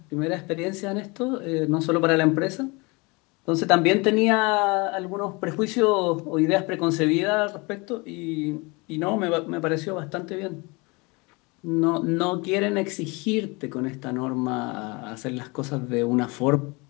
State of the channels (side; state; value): right; quieter; 27.1 dB